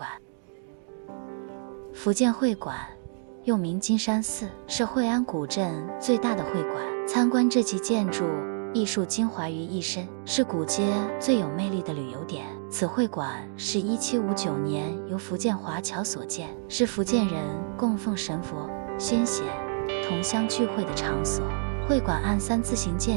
福建会馆又名金山寺，是会安古镇最大的会馆。参观这集建筑，艺术精华于一身，是古街最有魅力的旅游点。此会馆是1759年由福建华侨所建，是福建人供奉神佛、先贤、同乡聚会的场所。会馆按3字形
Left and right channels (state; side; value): silent; left; digital silence